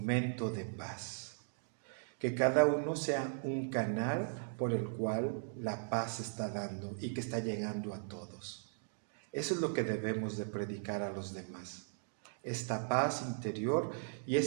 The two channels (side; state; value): left; silent; digital silence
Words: de paz. Que cada uno sea un canal por el cual la paz se está dando y que está llegando a todos. Eso es lo que debemos de predicar a los demás. Esta paz interior y